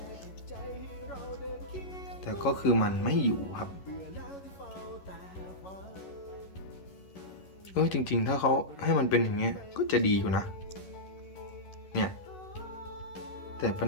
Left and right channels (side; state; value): right; late; 11 ms